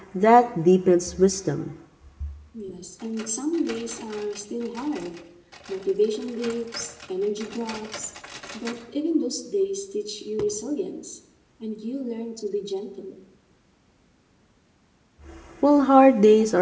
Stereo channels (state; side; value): identical; both; correlation 1.00